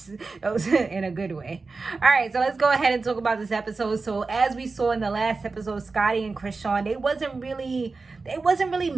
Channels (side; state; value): left; quieter; 4.0 dB